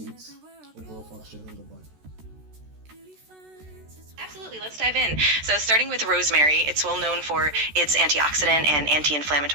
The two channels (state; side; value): late; left; 13 ms